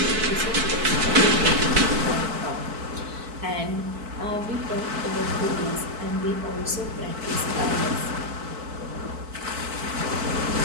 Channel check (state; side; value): late; left; 4.5 ms